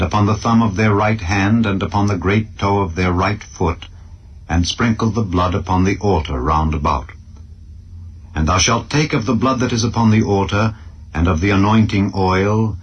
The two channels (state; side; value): identical; both; correlation 1.00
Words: upon the thumb of their right hand, and upon the great toe of their right foot, and sprinkle the blood upon the altar round about. And thou shalt take of the blood that is upon the altar, and of the anointing oil,